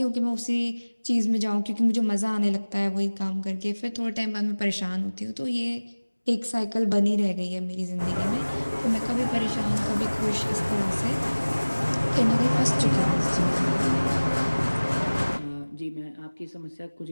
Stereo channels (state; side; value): inverted; both; correlation -1.00